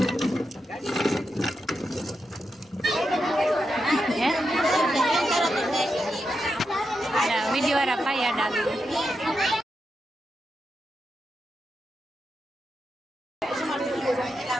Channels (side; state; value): both; normal; correlation 0.86